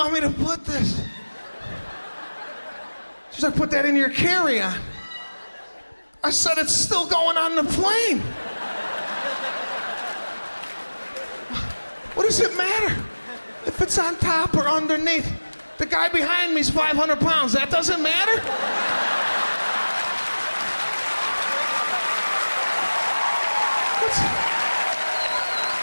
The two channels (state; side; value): inverted; both; correlation -1.00